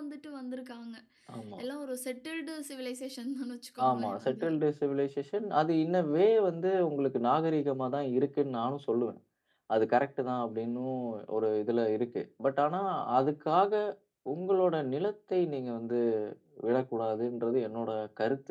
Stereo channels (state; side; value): identical; both; correlation 1.00